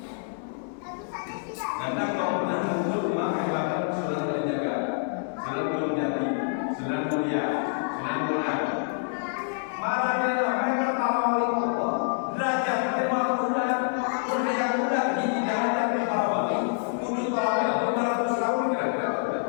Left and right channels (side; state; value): right; silent; digital silence